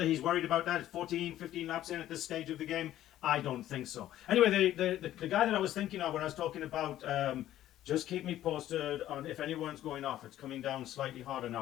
he's worried about that 14, 15 laps in at this stage of the game, I don't think so. Anyway, the guy that I was thinking of when I was talking about just keep me posted on if anyone's going off. It's coming down slightly harder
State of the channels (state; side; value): quieter; right; 13.1 dB